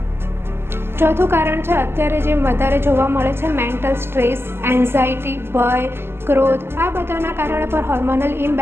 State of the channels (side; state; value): left; late; 0.11 ms